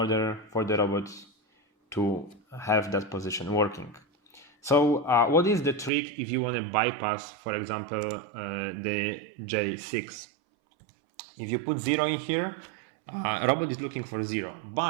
for the robot to have that position working. So what is the trick if you want to bypass, for example, the J6? If you put 0 in here, robot is looking for 0.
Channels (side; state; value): left; drops out; at 5.9 s